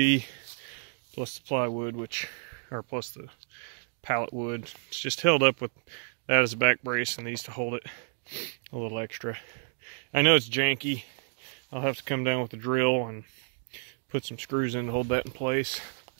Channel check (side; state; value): left; silent; digital silence